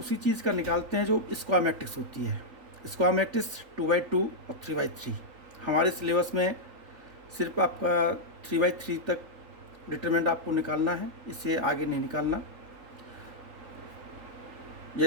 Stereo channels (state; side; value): late; left; 3.8 ms